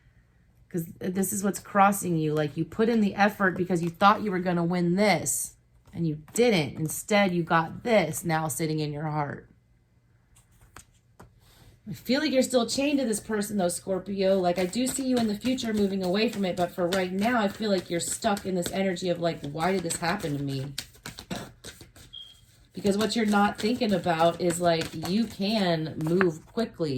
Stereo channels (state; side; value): identical; both; correlation 1.00